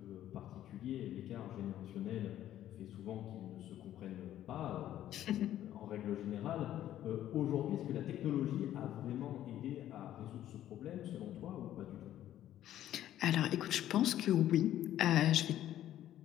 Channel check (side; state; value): right; quieter; 12.3 dB